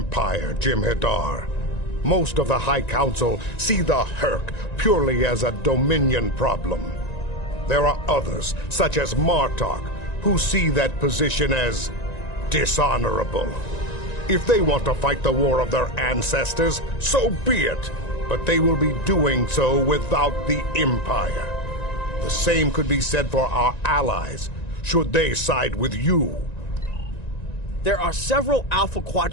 Jem'Hadar. Most of the High Council see the Herc purely as a Dominion problem. There are others, such as Martok, who see that position as dishonorable. If they want to fight the war of their ancestors, so be it. but they will be doing so without the Empire. The same could be said for our allies, should they side with you. There are several Alpha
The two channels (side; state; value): right; late; 1.9 ms